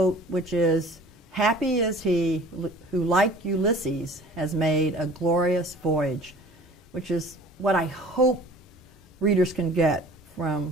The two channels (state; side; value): normal; both; correlation 0.47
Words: which is, "Happy is he who, like Ulysses, has made a glorious voyage," which is what I hope readers can get